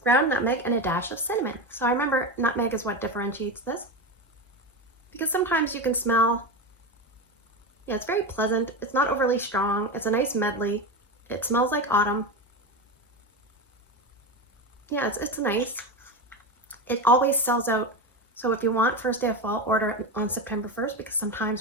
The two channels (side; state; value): both; normal; correlation 0.19